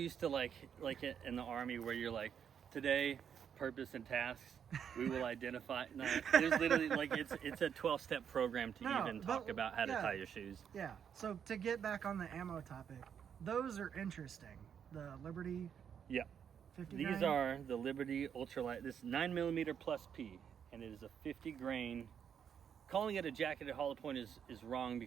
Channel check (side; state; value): left; quieter; 8.0 dB